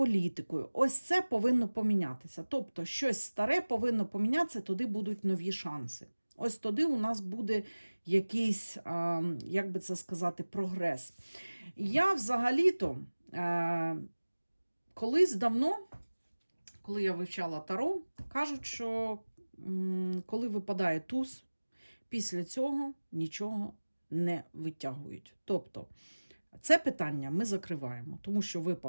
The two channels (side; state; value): both; inverted; correlation -1.00